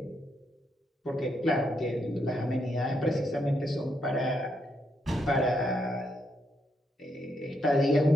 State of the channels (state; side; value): normal; both; correlation 0.78